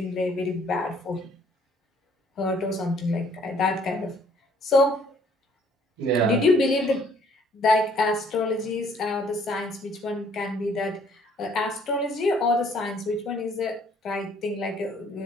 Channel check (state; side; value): normal; both; correlation 0.61